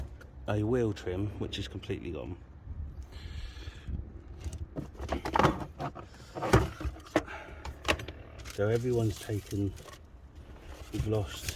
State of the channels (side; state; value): both; identical; correlation 1.00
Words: a wheel trim which is completely gone. So everyone's taken, we've